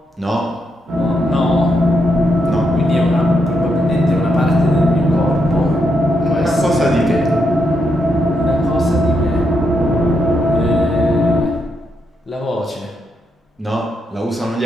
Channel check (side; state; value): both; normal; correlation 0.80